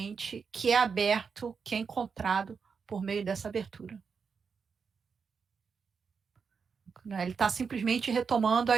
que é aberto, que é encontrado por meio dessa abertura. Ele está simplesmente retomando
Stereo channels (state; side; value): quieter; left; 5.7 dB